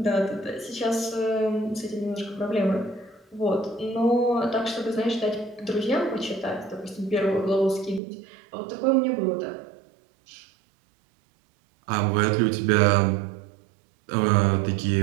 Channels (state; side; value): drops out; left; at 8.0 s